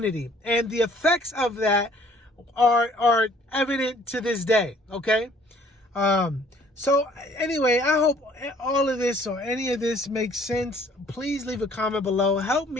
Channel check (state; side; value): normal; both; correlation 0.58